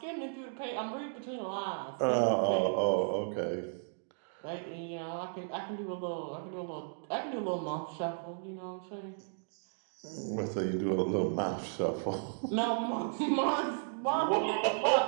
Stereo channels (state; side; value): silent; left; digital silence